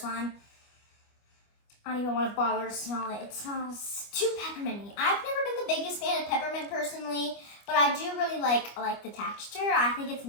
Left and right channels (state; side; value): late; right; 25 ms